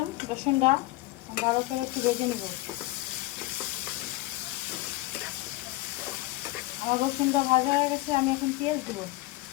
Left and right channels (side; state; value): right; quieter; 19.1 dB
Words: রসুনটা ভালো করে একটু ভেজে নেব। আমার রসুনটা ভাজা হয়ে গেছে। আমি এখন পেঁয়াজ দেবো।